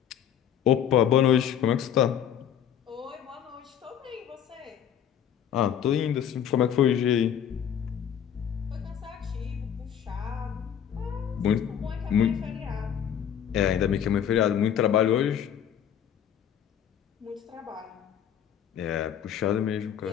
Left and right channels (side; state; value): right; quieter; 9.2 dB